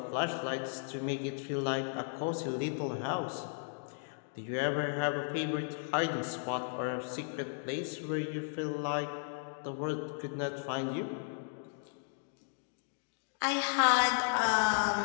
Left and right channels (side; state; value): right; silent; digital silence